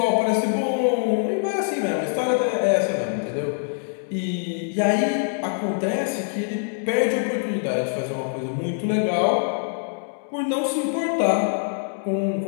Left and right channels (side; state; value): right; silent; 63 dB below the other